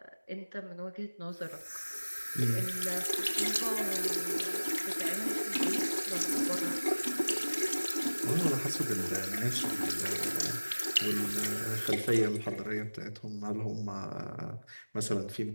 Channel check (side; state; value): both; inverted; correlation -1.00